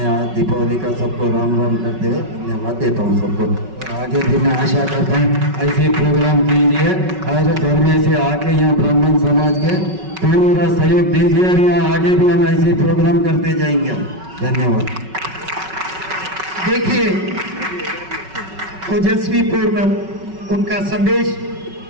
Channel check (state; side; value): late; left; 5.3 ms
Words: आज दीपावली का सबको राम राम करते हुए धन्यवाद देता हूँ सबको। आगे भी मैं आशा करता हूँ ऐसे प्रोग्राम कीजिए, हर घर में से आके यहाँ ब्राह्मण समाज के पूरा सहयोग दीजिए और यहाँ आगे भी हम ऐसे प्रोग्राम करते जाएंगे। धन्यवाद। देखिए ओजस्वी पूर्ण उनका संदेश,